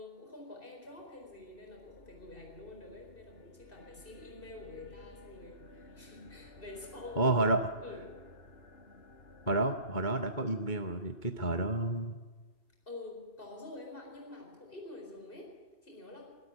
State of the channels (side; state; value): right; late; 2.6 ms